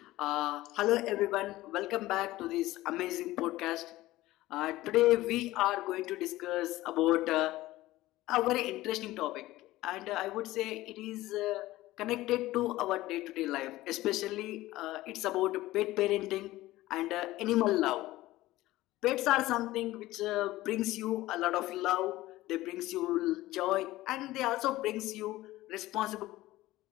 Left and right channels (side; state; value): right; quieter; 17.1 dB